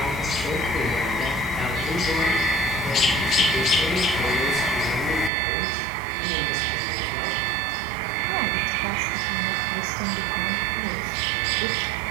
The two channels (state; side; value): drops out; left; at 5.3 s